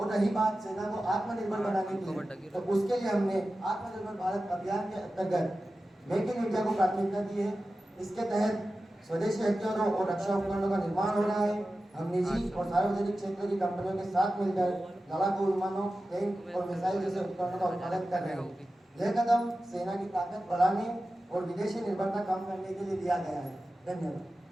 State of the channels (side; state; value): both; normal; correlation 0.94